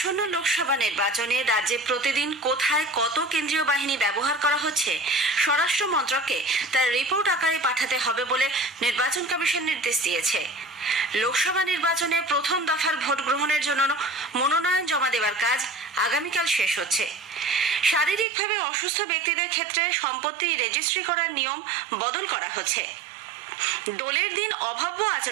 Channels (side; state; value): left; drops out; at 18.2 s